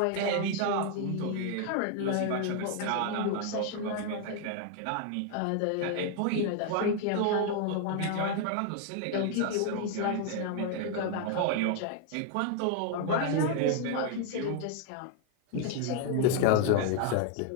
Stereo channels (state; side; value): different; both; correlation 0.00